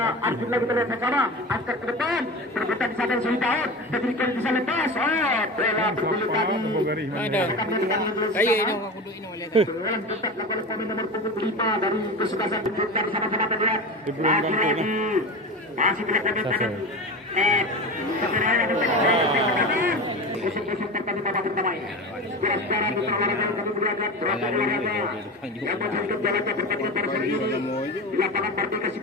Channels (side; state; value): both; normal; correlation 0.28